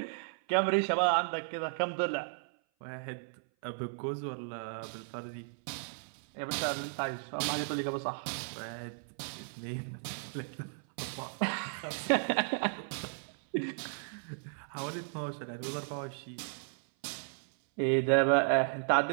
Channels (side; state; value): left; silent; 55 dB below the other